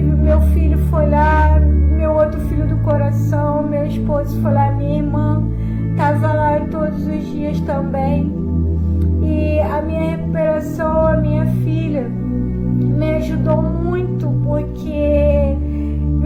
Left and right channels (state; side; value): identical; both; correlation 1.00